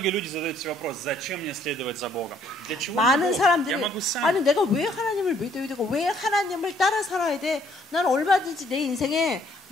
люди задают себе вопрос, зачем мне следовать за Богом? Для чего 많은 мне Бог? 사람들이 Я могу сам. 아니 내가 왜 하나님을 믿어야 되고 왜 하나님을 따라 살아야 돼? 난 얼마든지 내 인생에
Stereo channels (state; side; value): normal; both; correlation 0.64